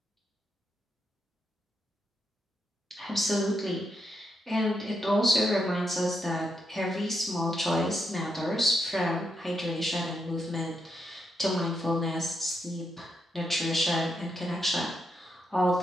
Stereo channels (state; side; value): normal; both; correlation 0.81